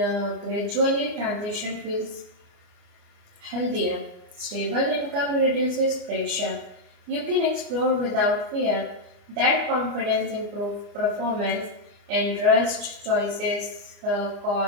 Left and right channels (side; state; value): left; late; 29 ms